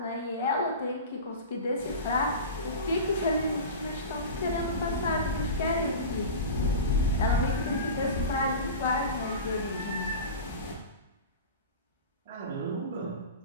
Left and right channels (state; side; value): inverted; both; correlation -0.30